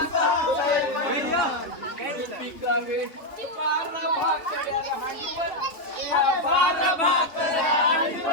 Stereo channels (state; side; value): late; right; 3.1 ms